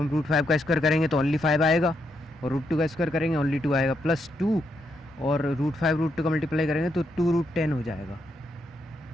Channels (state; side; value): normal; both; correlation 0.79